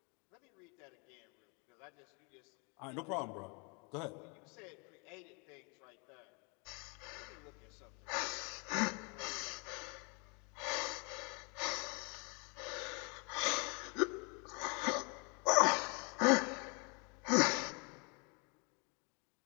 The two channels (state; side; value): quieter; right; 32.9 dB